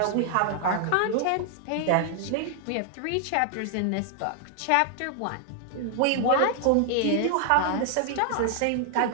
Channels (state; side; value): different; both; correlation 0.00